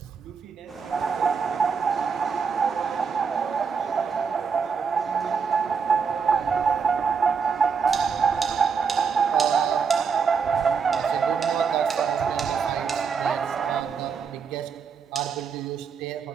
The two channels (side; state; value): left; quieter; 6.0 dB